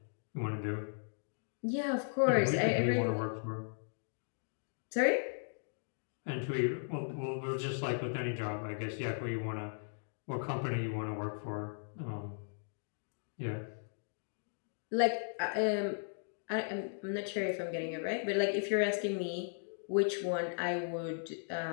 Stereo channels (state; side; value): silent; right; digital silence